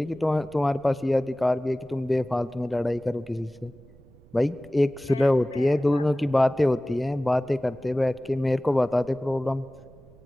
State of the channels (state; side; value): noise; right; rumble, 25 dB below the sound